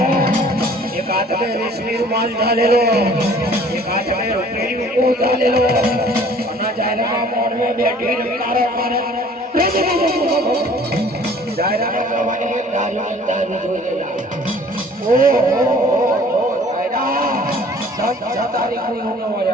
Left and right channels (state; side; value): normal; both; correlation 0.52